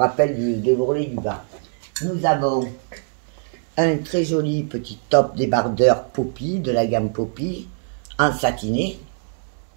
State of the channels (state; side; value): silent; left; 64 dB below the other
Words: de l'ourlet du bas. Nous avons un très joli petit top débardeur Poppy, de la gamme Poppy, en satiné.